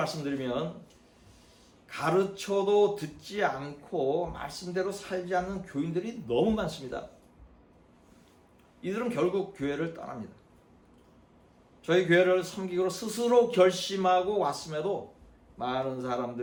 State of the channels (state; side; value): identical; both; correlation 1.00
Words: 가르쳐도 듣지 않고 말씀대로 살지 않는 교인들이 너무 많습니다. 이들은 결국 교회를 떠납니다. 저희 교회를 섬기기로 스스로 결심하고 왔음에도 많은